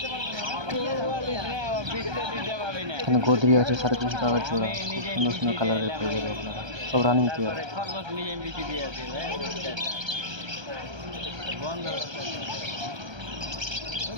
এখানে গোদরি আছে 350 টাকা জোড়া, খুব সুন্দর সুন্দর কালারের পেয়ে যাবে আপনারা, সব রানিং পেয়ার।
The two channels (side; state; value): left; late; 1.3 ms